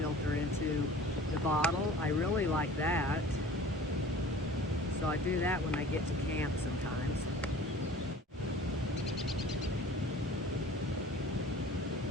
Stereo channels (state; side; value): normal; both; correlation 0.45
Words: into the bottle. I really like that. So I do that when I get to camp sometimes.